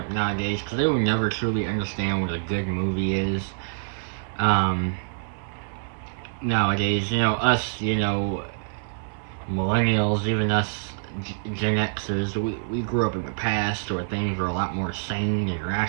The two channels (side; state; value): left; silent; 61 dB below the other